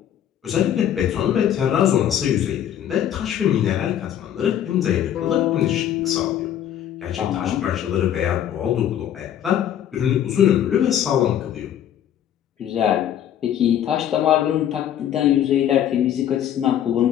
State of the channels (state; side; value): quieter; right; 10.4 dB